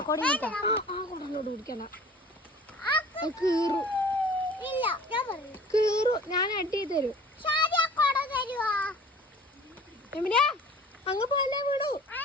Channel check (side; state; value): both; normal; correlation 0.46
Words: കൊടലോട് പിടിക്കണം. കീറു. ഞാൻ അടി തരും. അങ്ങ് പോലെ വീടു.